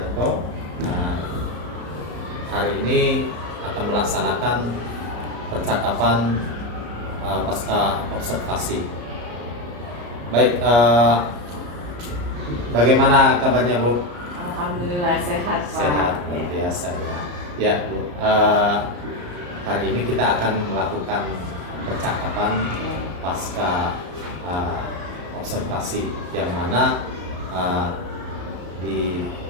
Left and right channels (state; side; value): late; left; 34 ms